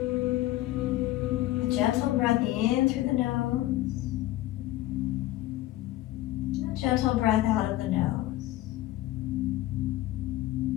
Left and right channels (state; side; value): quieter; right; 15.8 dB